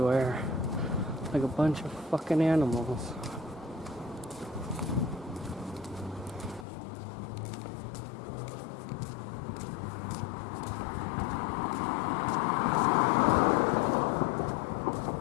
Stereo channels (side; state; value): right; drops out; at 6.7 s